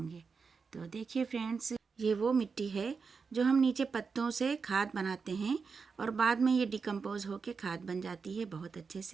तो देखिए फ्रेंड्स, ये वो मिट्टी है जो हम नीचे पत्तों से खाद बनाते हैं और बाद में ये डिकम्पोज होकर खाद बन जाती है बहुत अच्छे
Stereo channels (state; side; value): quieter; left; 5.2 dB